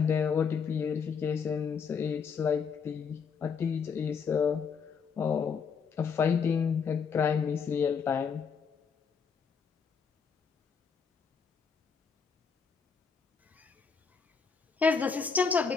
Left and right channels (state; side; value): quieter; right; 6.0 dB